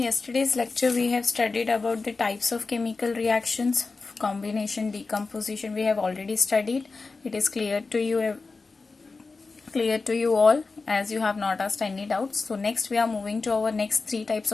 lecture we have studied about the types of chemical reactions, combination, decomposition. We have already studied. It is clear to you all, as you have not asked any doubts. So next we are moving to our next three types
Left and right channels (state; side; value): quieter; right; 4.0 dB